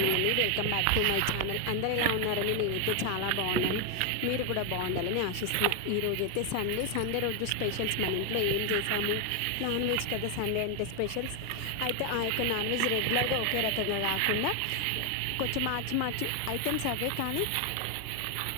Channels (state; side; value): different; both; correlation 0.01